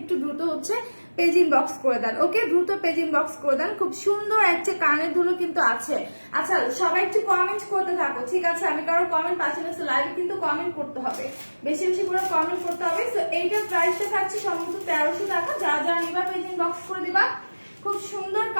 দ্রুত হচ্ছে পেজ ইনবক্স করে দেন, ওকে, দ্রুত পেজ ইনবক্স করে দেন। খুব সুন্দর একটা কানের দুলও কিন্তু আছে। আচ্ছা, সবাই একটু কমেন্ট করতে থাকো, ঠিক আছে। আমি কারো কমেন্ট পাচ্ছি না, লাইভে কিন্তু কমেন্ট করতে হবে, বেশি বেশি করে কমেন্ট করতে হবে। তো এইটার প্রাইসটা থাকছে সম্ভবত 1300 টাকা। যারা যারা নিবা পেজ ইনবক্স করে দিবা। খুব সুন্দর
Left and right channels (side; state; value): both; inverted; correlation -1.00